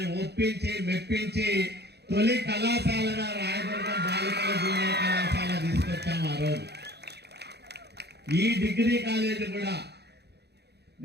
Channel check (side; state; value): left; late; 0.48 ms